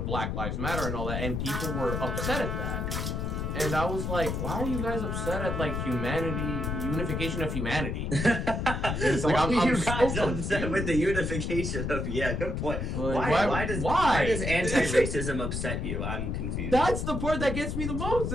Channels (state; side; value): noise; left; rumble, 2 dB below the sound